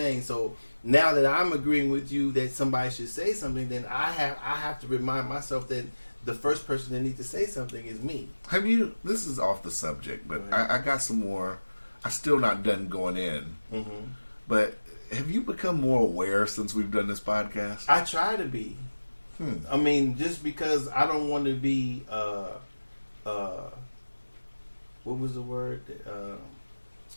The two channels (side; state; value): both; inverted; correlation -1.00